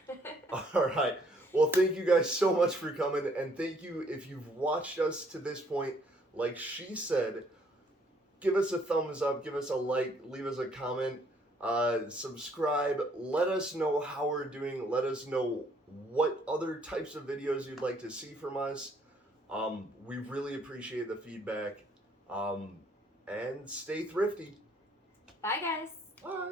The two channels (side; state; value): both; normal; correlation 0.65